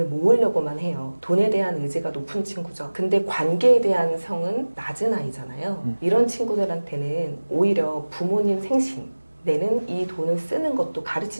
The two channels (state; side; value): inverted; both; correlation -1.00